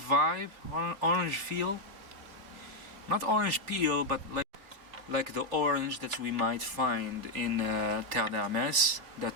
orange feel. Not orange peel, but like the orange that we might find in Terre d'Hermès,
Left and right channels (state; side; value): late; left; 3.4 ms